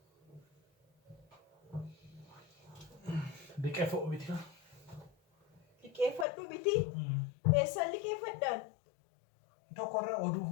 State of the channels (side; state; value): right; drops out; at 6.2 s